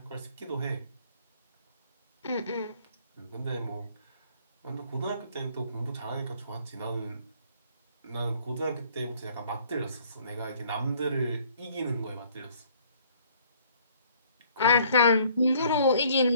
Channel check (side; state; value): both; inverted; correlation -0.59